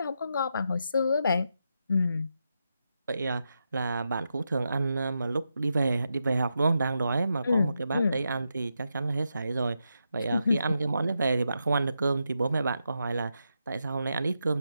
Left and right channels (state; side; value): inverted; both; correlation -0.85